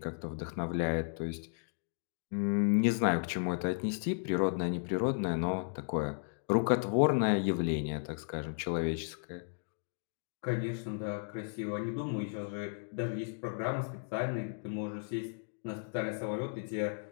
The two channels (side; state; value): right; silent; digital silence